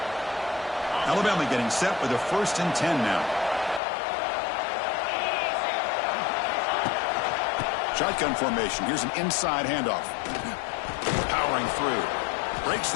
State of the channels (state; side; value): drops out; right; at 3.8 s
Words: Alabama getting set with a first and 10 now. Shotgun formation. Here's an inside handoff. Powering through. Breaks